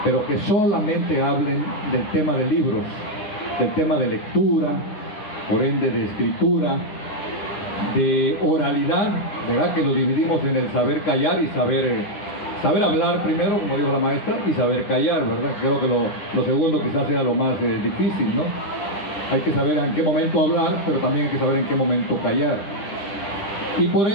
pero que solamente hablen del tema de libros, del tema de lectura, por ende de escritura, de oralidad, ¿verdad?, que lo dividimos en el saber callar y saber hablar primero, como dijo la maestra, y saber callar, ¿verdad? Creo que lo segundo quizás sea lo más difícil, ¿no? Hay que saber en qué momento hablar, pero también hay que saber en qué momento callar. Y por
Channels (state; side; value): late; right; 10 ms